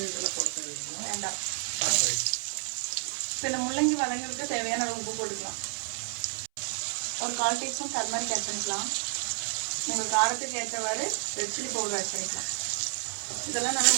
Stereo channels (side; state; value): left; silent; 58 dB below the other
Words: வேண்டாம். இப்போ இந்த முள்ளங்கி வதங்கிறதுக்கு தேவையான அளவு உப்பு போட்டுக்கலாம். ஒரு 1/4 டீஸ்பூன் டர்மரிக் ஆட் பண்ணிக்கலாம். உங்கள் காரத்துக்கு ஏற்றவாறு ரெட் சில்லி பவுடர் ஆட் பண்ணிக்கலாம். இதெல்லாம் நல்லா